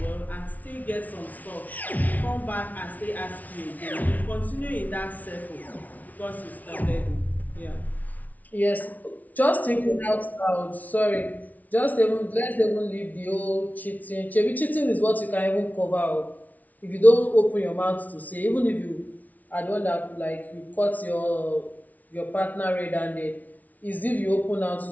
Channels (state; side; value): late; right; 0.075 ms